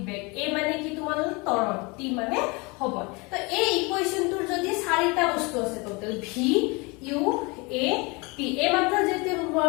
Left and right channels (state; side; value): quieter; right; 27.4 dB